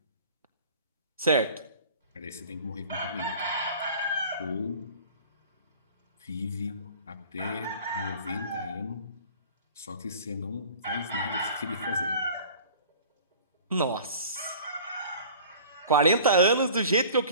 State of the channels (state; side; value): inverted; both; correlation -0.45